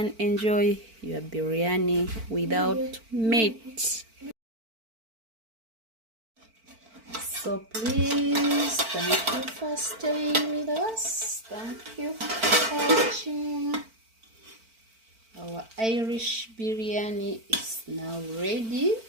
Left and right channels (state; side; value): late; left; 4.5 ms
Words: enjoy your biryani without meat. So please, thank you for staying with us. Thank you for watching. Our Irish biryani is now ready.